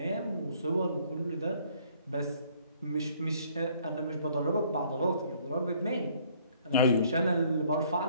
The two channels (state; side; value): inverted; both; correlation -0.62